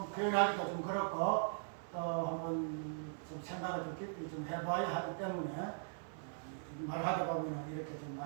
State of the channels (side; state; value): left; silent; 51 dB below the other